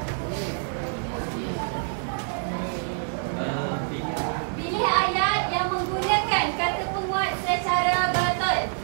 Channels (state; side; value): silent; left; digital silence